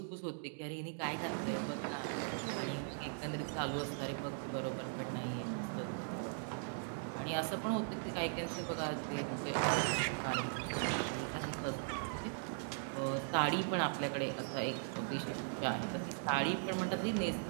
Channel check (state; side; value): silent; left; digital silence